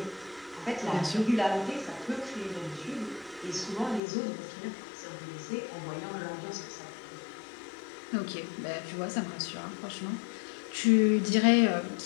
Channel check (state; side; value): drops out; right; at 4.0 s